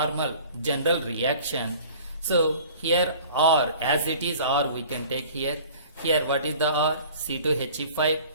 general reaction. So here R, as it is R we can take here. Here what is the R? C2He5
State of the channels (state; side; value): inverted; both; correlation -0.47